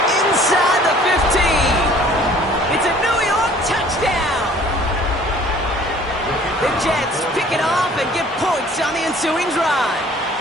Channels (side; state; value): both; normal; correlation 0.53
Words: inside the 15. It's a New York touchdown. The Jets pick it off and get points on the ensuing drive.